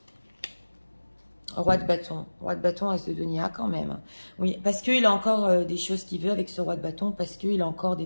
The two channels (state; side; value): inverted; both; correlation -1.00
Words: Roi de bâton, as de denier, quand même. Oui, parce qu'il a encore des choses qu'il veut avec ce roi de bâton, parce qu'il a encore des